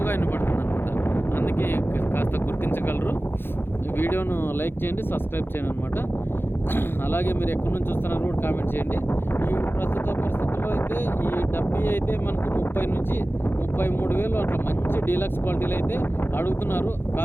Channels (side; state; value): right; late; 0.10 ms